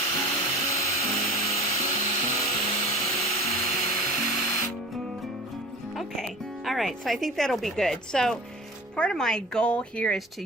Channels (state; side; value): normal; both; correlation 0.39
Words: Okay, all right, so I think that'll be good. So part of my goal here is to